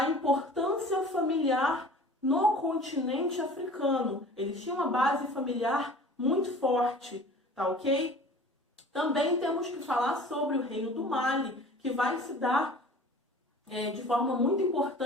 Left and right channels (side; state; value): both; normal; correlation 0.44